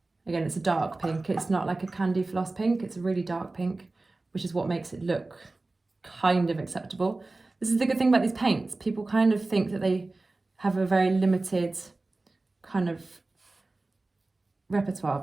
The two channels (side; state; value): left; quieter; 3.2 dB